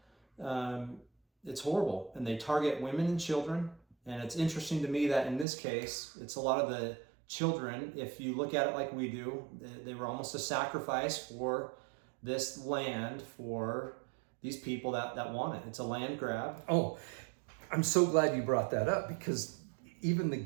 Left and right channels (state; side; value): drops out; left; at 5.5 s